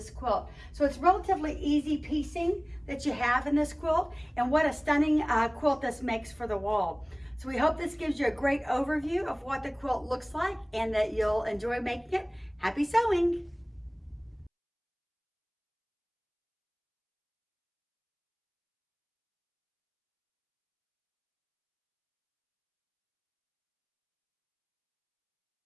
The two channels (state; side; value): identical; both; correlation 1.00